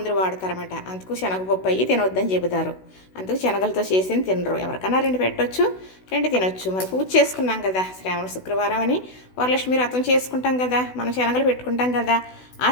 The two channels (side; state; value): right; late; 16 ms